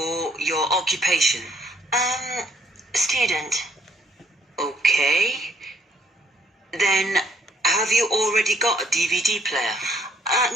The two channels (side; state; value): both; normal; correlation 0.65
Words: your occupation. Student. Okay. Then, have you already got a DVD player?